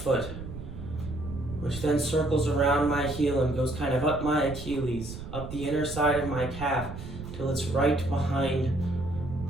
which then circles around my heel and goes kind of up my Achilles, up the inner side of my calf, till it's right behind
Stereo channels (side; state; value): right; noise; rumble, 10 dB below the sound